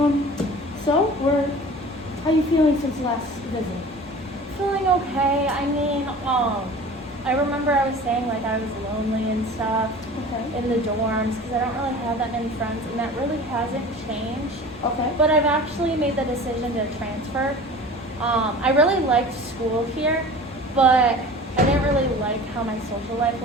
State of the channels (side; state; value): both; normal; correlation 0.40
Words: How you feeling since last visit? Feeling okay. I remember I was saying like I was lonely and stuff Okay. in the dorms because I don't really have that many friends, and that really hasn't changed. Okay. But I've actually made the decision to transfer. I really liked school here, but I didn't really like how my social life